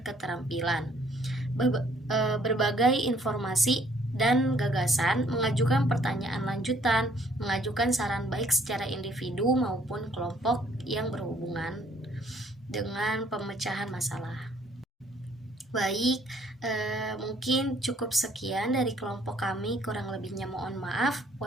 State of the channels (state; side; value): normal; both; correlation 0.62